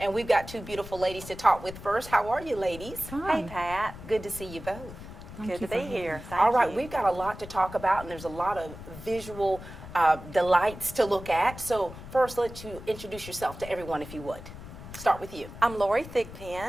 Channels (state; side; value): noise; left; rumble, 13 dB below the sound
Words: we've got two beautiful ladies to talk with first. How are you, ladies? Hi. Hey, Pat. Good to see you both. Good to be here. Thank All right, you. we've got a lot to talk about, and there's a lot of visual delights to look at. So first, let you introduce yourself to everyone, if you would. Start with you. I'm Lori